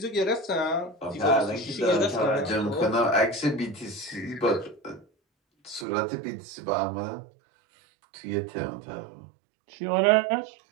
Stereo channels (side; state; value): left; drops out; at 5.9 s